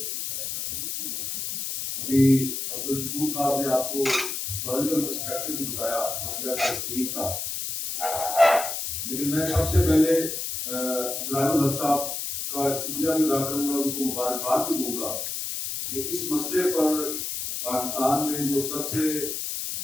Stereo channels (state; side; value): noise; left; hiss, 4 dB below the sound